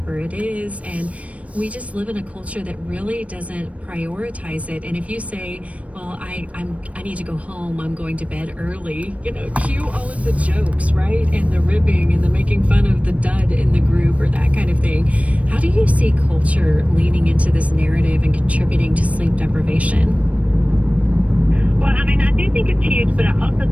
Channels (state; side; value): late; left; 0.065 ms